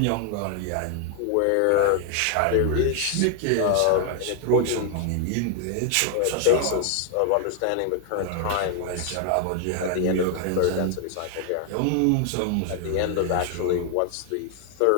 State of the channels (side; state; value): both; different; correlation 0.00